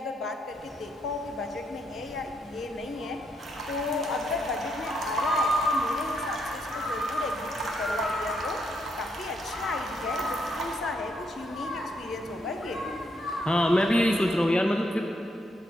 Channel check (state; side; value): normal; both; correlation 0.76